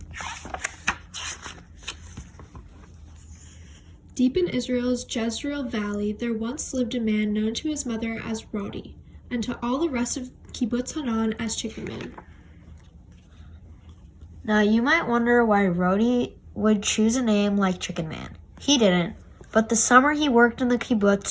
Deep in Israel's Jezreel Valley, there once lived a man known to his mother as Rodi, and to all the rest of Kibbutz Hanan as Chicken Man. Now you might wonder why Rodi would choose a name like Chicken Man. He didn't, but the summer he worked in the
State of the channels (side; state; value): both; identical; correlation 1.00